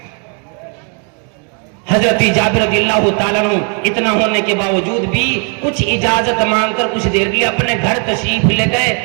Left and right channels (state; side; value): quieter; left; 38.5 dB